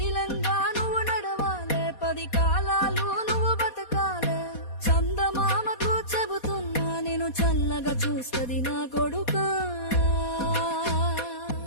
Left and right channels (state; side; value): late; right; 4.2 ms